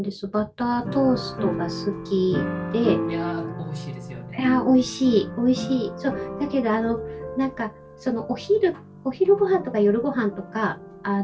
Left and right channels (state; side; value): identical; both; correlation 1.00